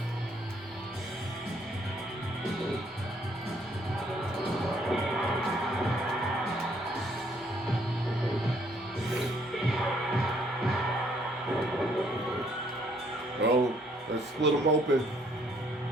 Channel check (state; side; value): normal; both; correlation 0.66